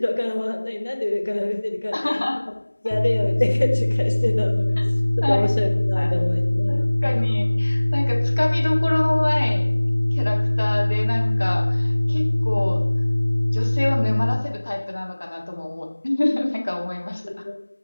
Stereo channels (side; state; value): both; inverted; correlation -1.00